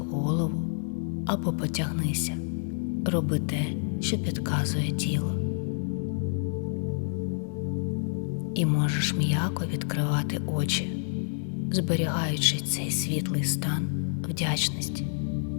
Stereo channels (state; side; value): silent; right; 59 dB below the other